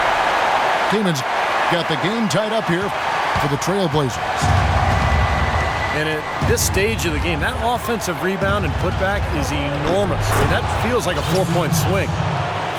Kaman's got the game tied up here for the Trailblazers. And at this stage of the game, that offensive rebound and putback is enormous. I mean, that feels like a 4-point swing.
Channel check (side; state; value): both; identical; correlation 1.00